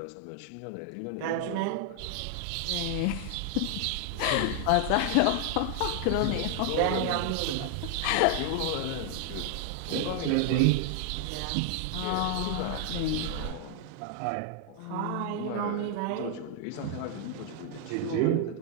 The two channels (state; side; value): different; both; correlation 0.00